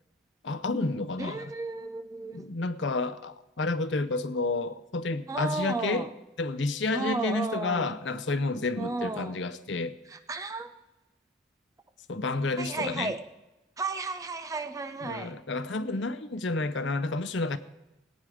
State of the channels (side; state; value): both; normal; correlation 0.37